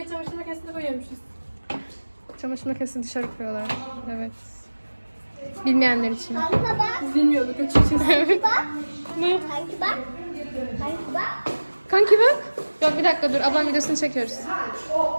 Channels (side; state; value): both; inverted; correlation -1.00